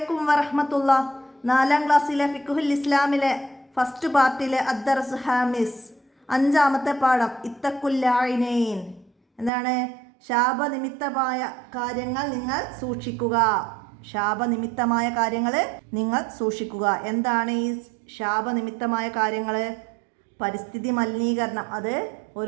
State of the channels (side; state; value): left; drops out; at 9.5 s